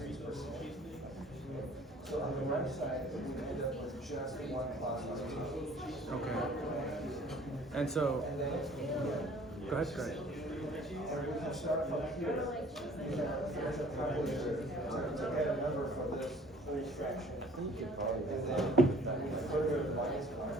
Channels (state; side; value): normal; both; correlation 0.53